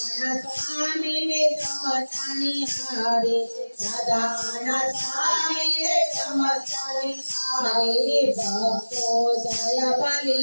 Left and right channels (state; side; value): inverted; both; correlation -1.00